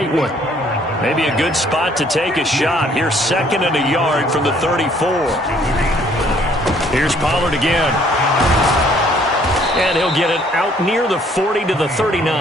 one. Maybe a good spot to take a shot. Here's 2nd and a yard from the 34. Here's Pollard again. And he'll get it out near the 40 to the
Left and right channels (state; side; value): normal; both; correlation 0.62